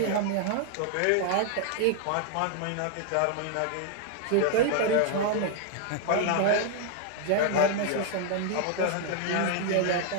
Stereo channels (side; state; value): both; different; correlation 0.00